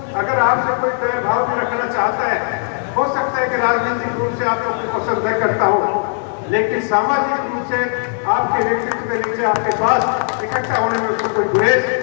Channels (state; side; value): silent; right; 67 dB below the other